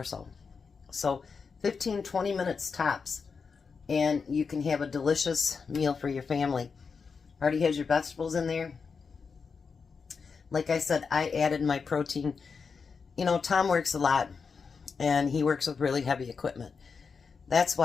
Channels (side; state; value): right; quieter; 5.4 dB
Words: so. So, 15, 20 minutes tops, and you can have a delicious meal for your family. Already has your vegetables in there. Like I said, I added my protein. You know, Tom works a lot, and he works with really heavy equipment. That's